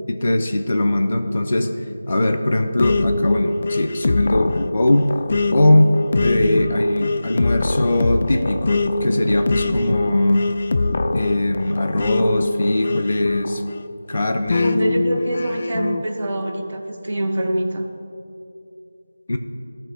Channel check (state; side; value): inverted; both; correlation -0.96